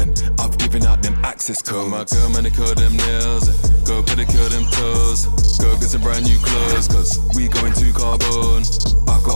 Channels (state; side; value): inverted; both; correlation -1.00